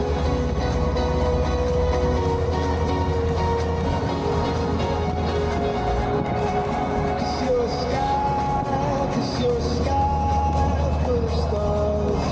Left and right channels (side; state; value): both; identical; correlation 1.00